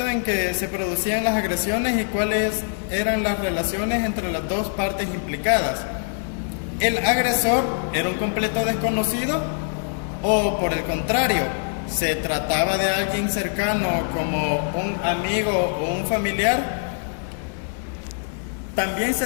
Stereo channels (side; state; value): right; silent; digital silence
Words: en que se producían las agresiones y cuáles eran las relaciones entre las dos partes implicadas. ¿El agresor era un completo desconocido? ¿O por el contrario, se trataba de alguien cercano como un amigo o un familiar? También